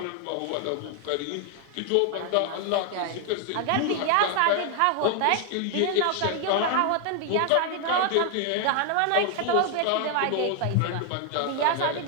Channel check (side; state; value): both; different; correlation 0.00